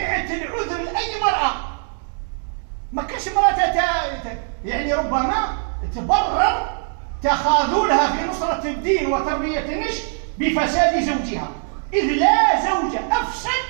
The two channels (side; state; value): left; silent; 56 dB below the other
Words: العذر لأي مرأة، ما كاش مرأة يعني ربما تبرر تخاذلها في نصرة الدين وتربية النشء بفساد زوجها، إذ لا زوج أفسد